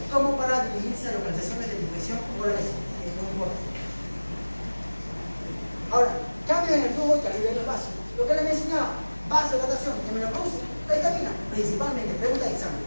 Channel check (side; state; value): both; inverted; correlation -1.00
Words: como para dirigirse a localizaciones de infección o la lesión. Es muy importante. Ahora, cambios en el flujo y calidad de los vasos. Lo que les mencionaba, vasodilatación, hemenopausia, la vitamina, principalmente, pregunta de examen.